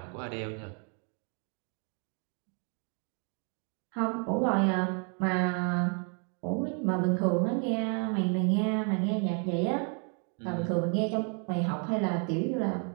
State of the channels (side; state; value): left; quieter; 39.7 dB